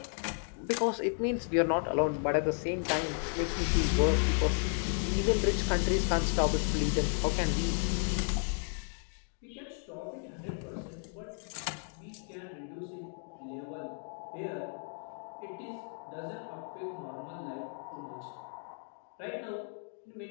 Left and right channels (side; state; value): right; silent; 55 dB below the other